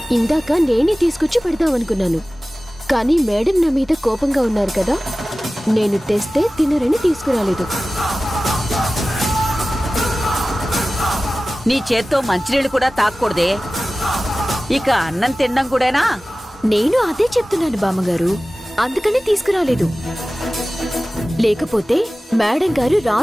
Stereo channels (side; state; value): both; normal; correlation 0.96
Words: ఇందాక నేనే తీసుకొచ్చి పెడదామనుకున్నాను, కానీ మేడం నా మీద కోపంగా ఉన్నారు కదా, నేను తెస్తే తినరని తీసుకురాలేదు. నీ చేత్తో మంచినీళ్ళు కూడా తాక్కూడదే. ఇక అన్నం తినడం కూడానా? నేను అదే చెప్తున్నాను బామ్మగారు, అందుకని తీసుకురాలేదు. లేకపోతే మేడం గారు